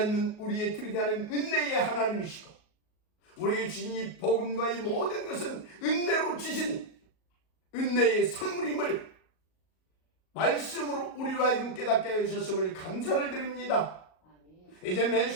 우리의 들이대하는 은혜의 하나님이시고 우리에게 주신 이 복음과 이 모든 것은 은혜로 주신 은혜의 선물임을 말씀으로 우리로 하여금 깨닫게 해주셨음을 감사를 드립니다. 이제 매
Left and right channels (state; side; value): late; right; 38 ms